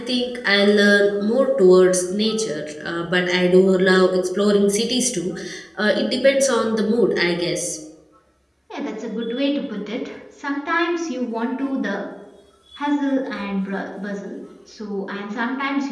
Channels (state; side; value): identical; both; correlation 1.00